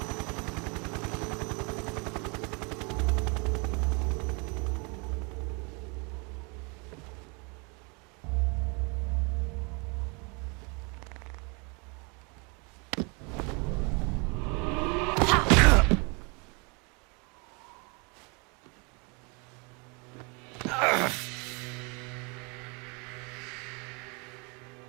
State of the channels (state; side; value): quieter; left; 31.6 dB